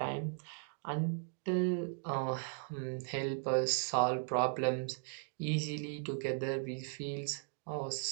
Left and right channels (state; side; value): silent; left; digital silence